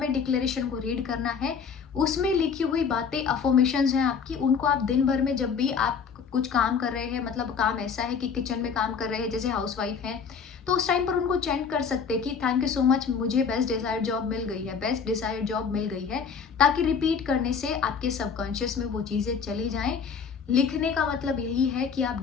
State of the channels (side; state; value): right; quieter; 6.2 dB